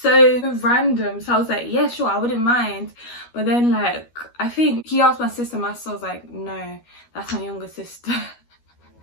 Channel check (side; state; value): right; late; 12 ms